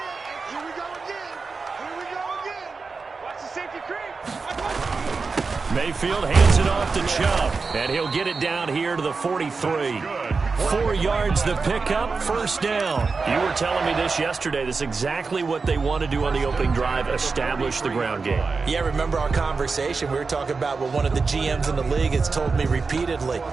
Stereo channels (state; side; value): quieter; left; 4.5 dB